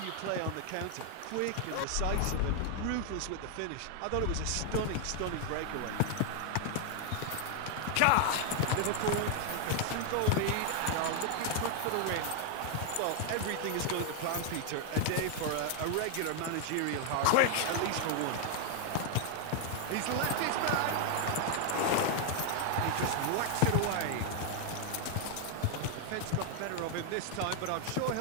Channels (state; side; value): different; both; correlation 0.00